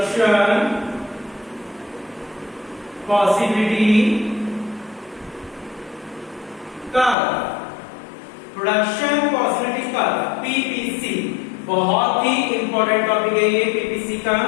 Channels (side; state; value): right; drops out; at 7.2 s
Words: possibility curve. Production possibility curve, PPC, बहुत ही इंपॉर्टेंट टॉपिक है ये पीपीसी का।